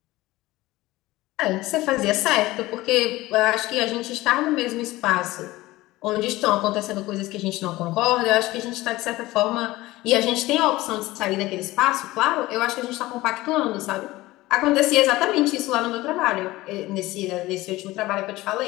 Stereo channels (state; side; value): quieter; right; 18.5 dB